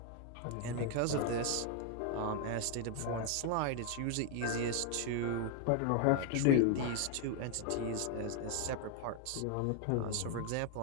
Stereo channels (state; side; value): different; both; correlation 0.01